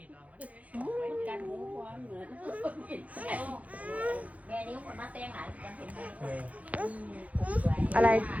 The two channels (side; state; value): left; late; 0.067 ms